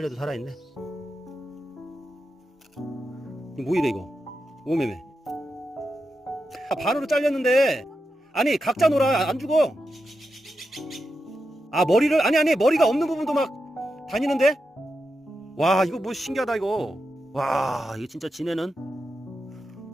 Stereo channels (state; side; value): normal; both; correlation 0.88